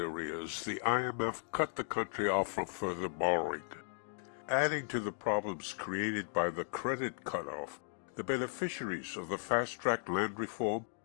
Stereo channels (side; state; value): right; silent; digital silence